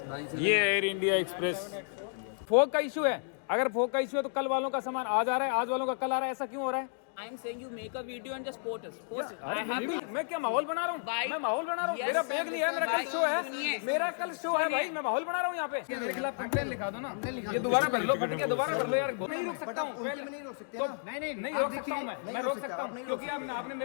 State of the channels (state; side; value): silent; right; digital silence